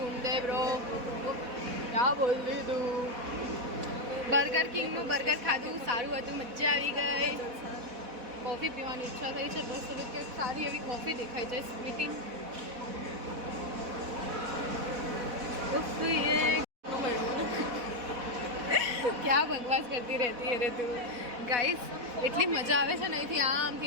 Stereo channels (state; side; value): late; left; 4.1 ms